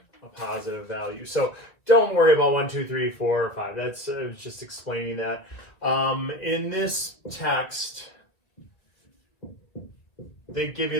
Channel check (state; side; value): late; right; 1.7 ms